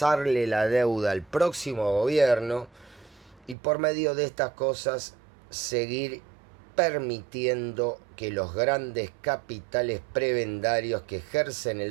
la deuda al próximo gobierno y por medio de estas cosas seguir permitiendo que los grandes capitales prebendarios que ejercen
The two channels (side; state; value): left; drops out; at 3.6 s